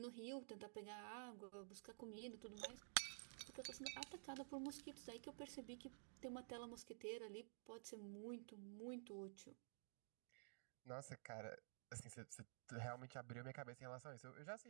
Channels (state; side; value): silent; left; digital silence